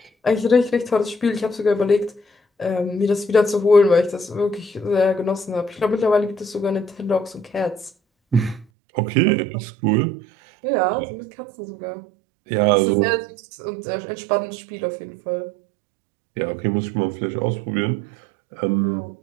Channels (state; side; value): drops out; left; at 8.7 s